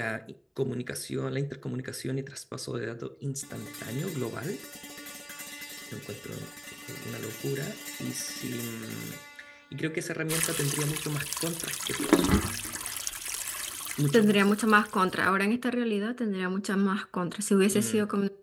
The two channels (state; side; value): identical; both; correlation 1.00